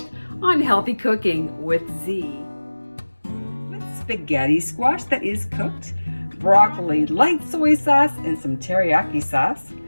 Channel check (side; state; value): both; inverted; correlation -1.00